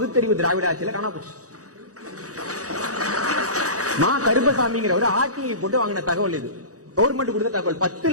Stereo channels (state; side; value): late; left; 0.66 ms